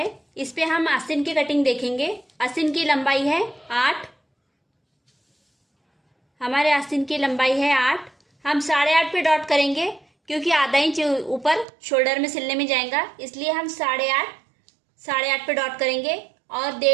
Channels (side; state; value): left; drops out; at 11.7 s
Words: इस पे हम आस्तीन की कटिंग देखेंगे। आस्तीन की लंबाई है 8। हमारे आस्तीन की लंबाई है 8। हम 8.5 पे डॉट करेंगे, क्योंकि आधा इंच ऊपर शोल्डर में सिलने में जाएगा, इसलिए हम 8.5 पे डॉट करेंगे और